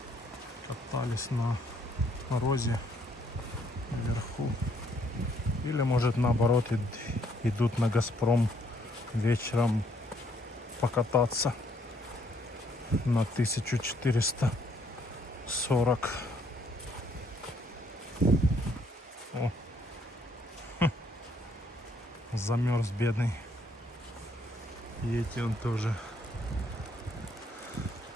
Катались на морозе вверху. Или может наоборот идут на Газпром вечером покататься на 1440. О. Замерз бедный. И эти он тоже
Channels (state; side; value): normal; both; correlation 0.68